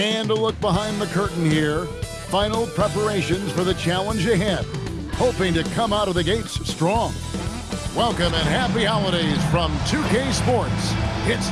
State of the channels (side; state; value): both; identical; correlation 1.00